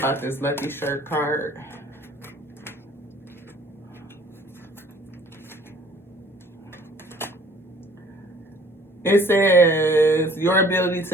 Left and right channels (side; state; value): both; normal; correlation 0.55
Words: this lucky shirt card? It says your ability